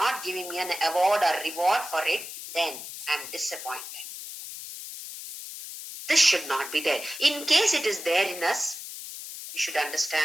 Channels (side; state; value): left; noise; hiss, 10 dB below the sound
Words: giving me an award or reward for it, then I am disappointed. This should not be there. In case it is there in us, we should